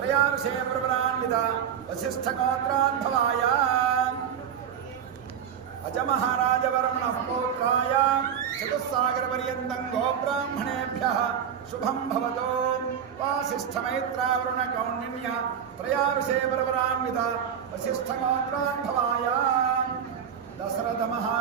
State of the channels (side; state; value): left; quieter; 8.3 dB